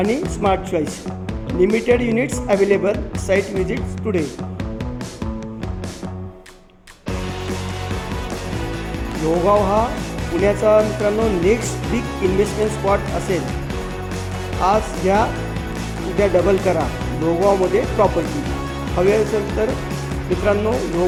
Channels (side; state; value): both; identical; correlation 1.00